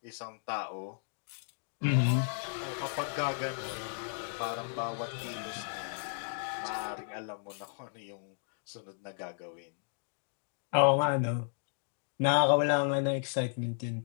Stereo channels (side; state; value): right; silent; digital silence